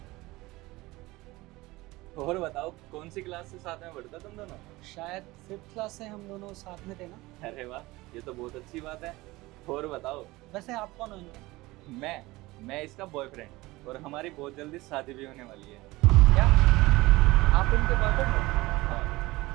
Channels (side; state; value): left; quieter; 20.2 dB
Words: और बताओ, कौन सी क्लास से साथ में पढ़ते तुम दोनों? शायद 5th क्लास से हम दोनों साथ में थे ना। अरे वाह, ये तो बहुत अच्छी बात है। और बताओ। वैसे आप कौन हो इनके? मैं इसका बॉयफ्रेंड, और हमारी बहुत जल्दी शादी भी होने वाली है। क्या आप इनके बॉयफ्रेंड हो?